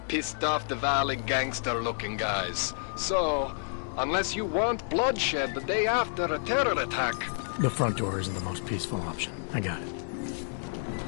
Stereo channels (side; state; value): right; silent; digital silence